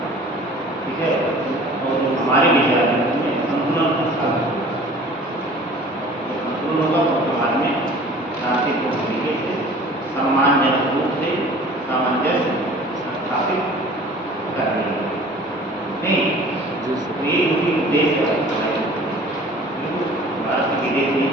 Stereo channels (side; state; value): both; normal; correlation 0.46